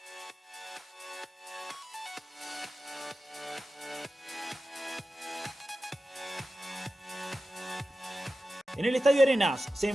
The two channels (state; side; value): normal; both; correlation 0.93